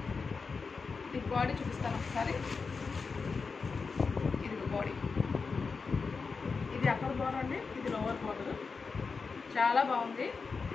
ఇది బాడీ చూపిస్తాను ఒకసారి. ఇది బాడీ, ఇది అప్పర్ బార్డర్ అండి, ఇది లోవర్ బార్డర్. చాలా బాగుంది.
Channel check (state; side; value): quieter; right; 4.8 dB